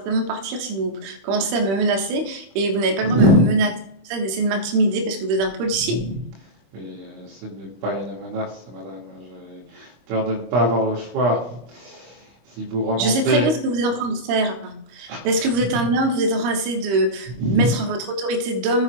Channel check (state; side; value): late; left; 26 ms